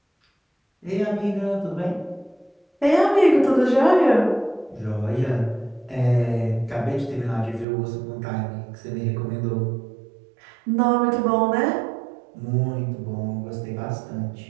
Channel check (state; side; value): drops out; left; at 7.7 s